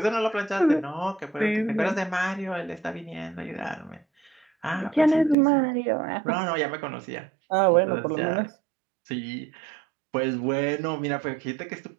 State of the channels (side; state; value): left; drops out; at 5.4 s